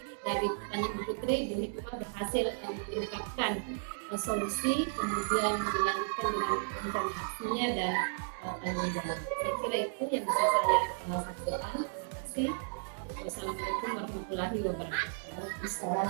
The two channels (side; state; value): left; silent; digital silence